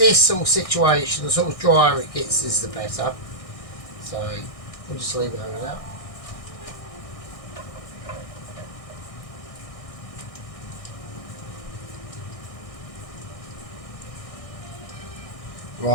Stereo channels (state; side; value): late; right; 1.6 ms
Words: sort of situation, the sort of drier it gets is the better. So we'll just leave it over that.